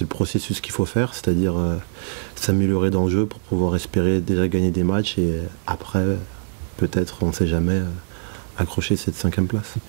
le processus qu'il faut faire, c'est-à-dire s'améliorer dans le jeu pour pouvoir espérer déjà gagner des matchs et après peut-être, on ne sait jamais, accrocher cette 5e place.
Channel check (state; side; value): silent; left; 64 dB below the other